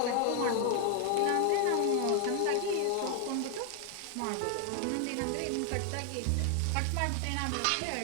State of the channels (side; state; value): both; different; correlation 0.00